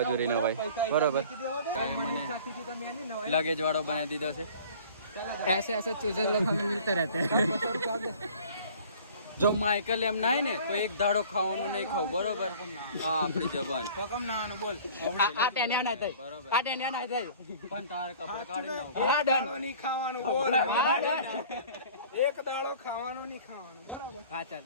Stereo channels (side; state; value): both; inverted; correlation -0.47